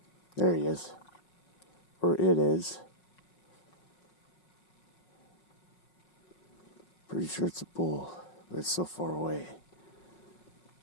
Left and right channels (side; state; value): right; late; 5.5 ms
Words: There he is. Or it is. Pretty sure it's a bull, but it's so far away.